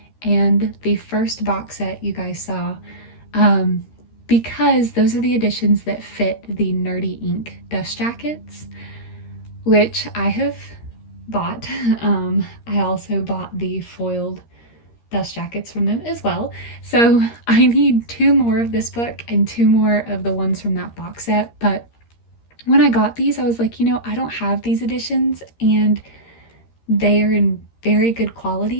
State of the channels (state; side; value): late; right; 13 ms